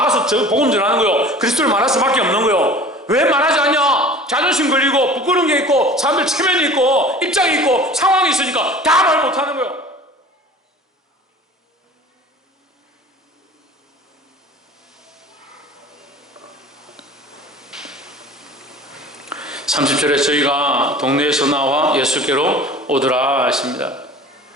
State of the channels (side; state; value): both; normal; correlation 0.42